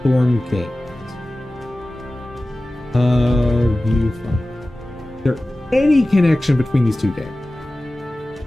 Games. Viewfinder. Is there any connection between these two games?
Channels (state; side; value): normal; both; correlation 0.96